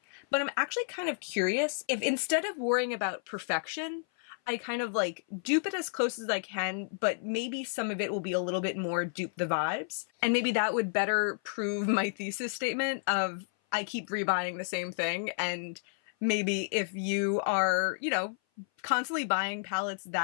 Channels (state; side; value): silent; right; 56 dB below the other